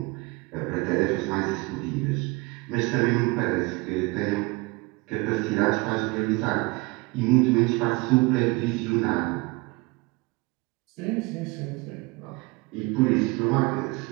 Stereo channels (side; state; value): left; quieter; 25.3 dB